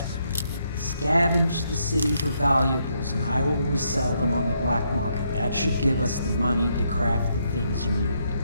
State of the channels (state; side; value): inverted; both; correlation -0.76